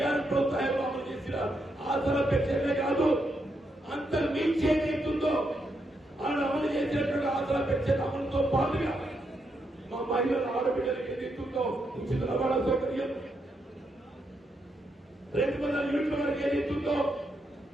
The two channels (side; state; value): both; normal; correlation 0.81